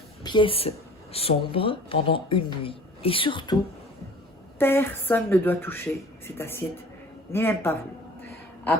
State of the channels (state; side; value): normal; both; correlation 0.46